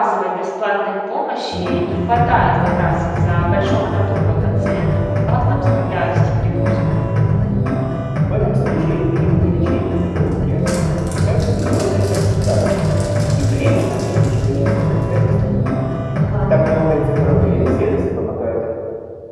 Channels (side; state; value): both; identical; correlation 1.00